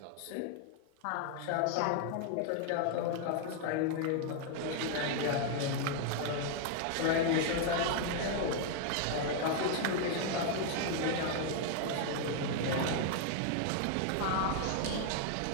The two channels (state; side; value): different; both; correlation 0.00